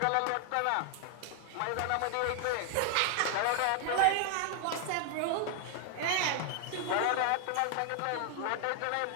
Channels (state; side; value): different; both; correlation 0.00